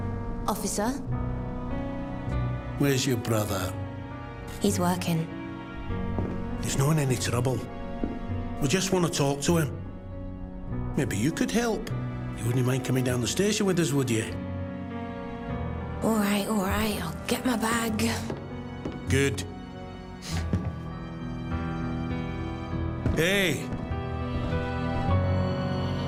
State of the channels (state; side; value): identical; both; correlation 1.00